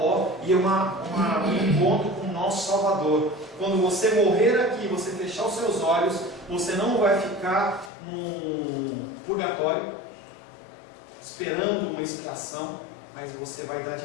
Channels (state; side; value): drops out; right; at 7.9 s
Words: e um encontro com o nosso Salvador. Quando você morrer aqui, você fechar os seus olhos, você não vai ficar num purgatório esperando uma expiação, mas você vai dar